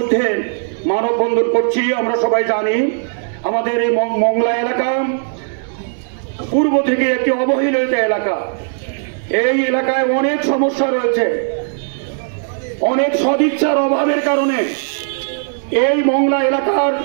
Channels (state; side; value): silent; left; 67 dB below the other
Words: মানববন্ধন করছি। আমরা সবাই জানি আমাদের এই মংলা এলাকা পূর্ব থেকে একটি অবহেলিত এলাকা। এই এলাকায় অনেক সমস্যা রয়েছে, অনেক সদিচ্ছার অভাবের কারণে এই মংলা এলাকার